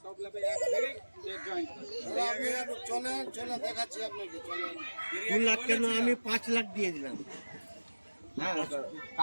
চলে দেখাচ্ছি আপনাকে, চলেন। 2 লাখ কেন, আমি 5 লাখ দিয়ে দিলাম। হ্যাঁ,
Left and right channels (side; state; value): both; inverted; correlation -1.00